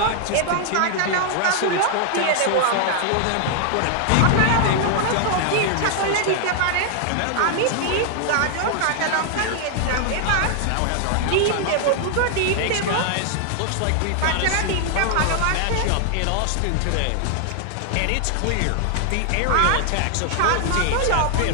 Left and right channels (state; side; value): different; both; correlation 0.00